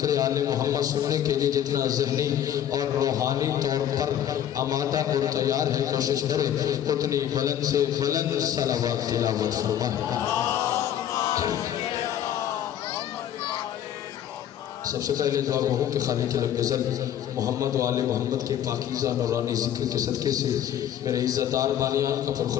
آل محمد سننے کے لیے جتنا ذہنی اور روحانی طور پر آمادہ اور تیار ہے، کوشش کرے اتنی بلند سے بلند صلوات تلاوت فرمائے۔ سب سے پہلے دعا گو ہوں کہ خالق لم یزل محمد و آل محمد کے پاکیزہ نورانی ذکر کے صدقے سے میرے عزتدار بانیان کا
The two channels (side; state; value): right; quieter; 10.6 dB